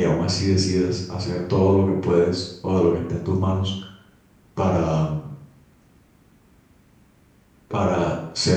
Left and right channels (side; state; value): both; identical; correlation 1.00